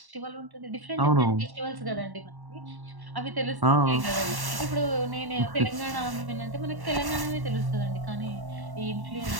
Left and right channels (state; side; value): late; left; 1.1 ms